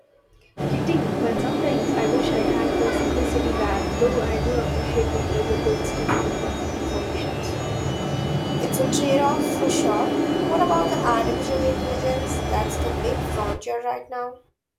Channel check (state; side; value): identical; both; correlation 1.00